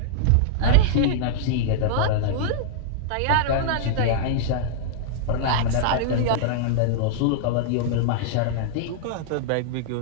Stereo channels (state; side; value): different; both; correlation -0.02